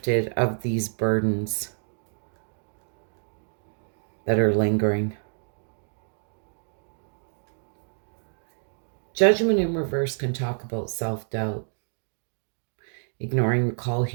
of these burdens that are lingering. Judgment in reverse can talk about self-doubt. Ignoring the call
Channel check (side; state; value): left; silent; 59 dB below the other